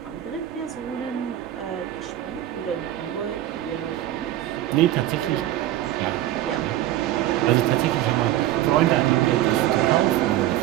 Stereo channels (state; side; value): quieter; left; 13.5 dB